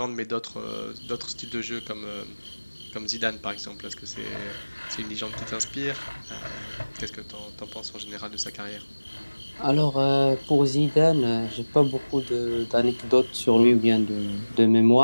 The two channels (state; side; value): inverted; both; correlation -1.00